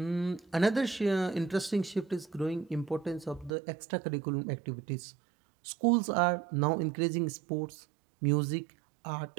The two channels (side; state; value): left; drops out; at 3.5 s